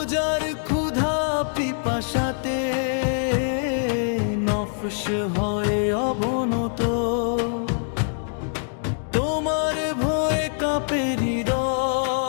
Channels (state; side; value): silent; right; digital silence